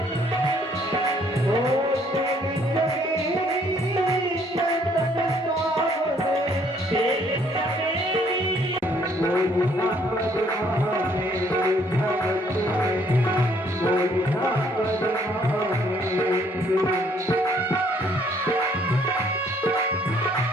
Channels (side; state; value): both; normal; correlation 0.64